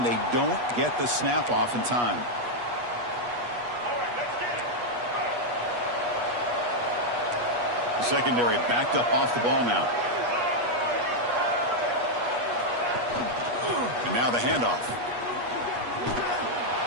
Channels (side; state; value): left; late; 8.3 ms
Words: they don't get the snap off in time. The secondary backed up off the ball now. And now the handoff.